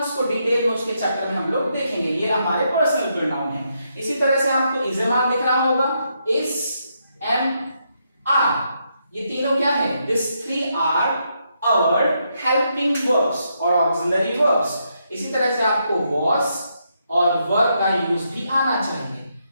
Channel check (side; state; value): both; inverted; correlation -0.79